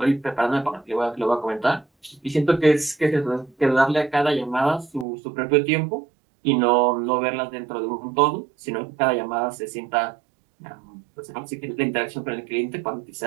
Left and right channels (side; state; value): left; drops out; at 5.1 s